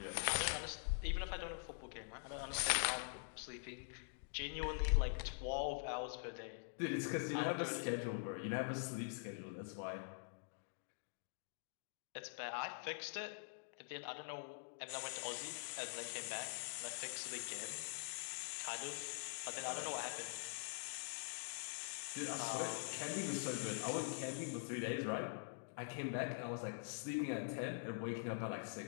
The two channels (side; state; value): right; silent; digital silence